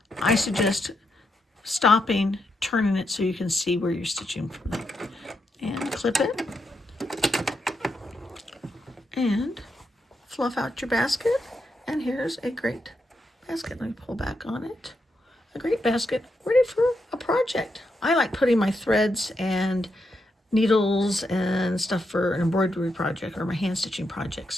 I suggest stopping, turning it so you can see where you're stitching from. And clip it. And fluff out your basket. And here's a great basket. Let me pull back on it. A great basket ready for a project. I like putting my threads and needles and stuff for an embroidery project or my hand stitching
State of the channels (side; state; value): both; normal; correlation 0.83